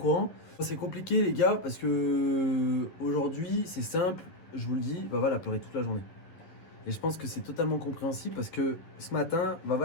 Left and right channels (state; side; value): late; right; 11 ms